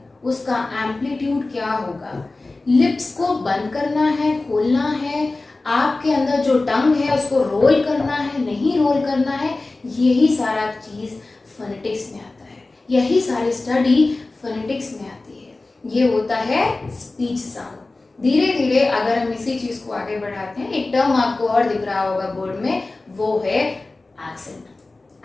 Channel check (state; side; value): quieter; right; 3.2 dB